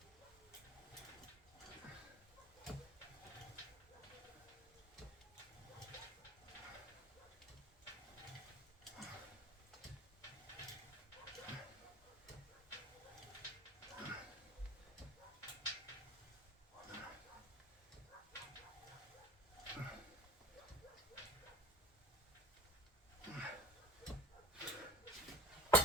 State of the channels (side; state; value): both; normal; correlation 0.40